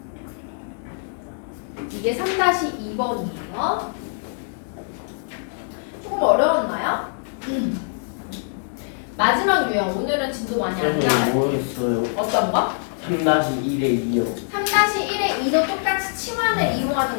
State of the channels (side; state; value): right; silent; digital silence